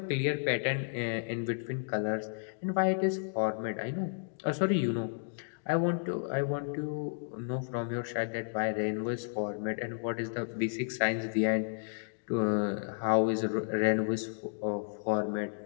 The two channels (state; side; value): silent; right; digital silence